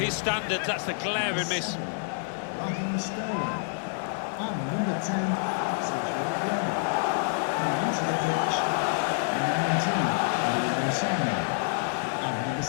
standards, that's a glaring miss. Raheem Sterling. And number 10, Sergio Aguero. And onto the pitch, number 19, Leroy Sané. And number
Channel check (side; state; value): right; silent; 60 dB below the other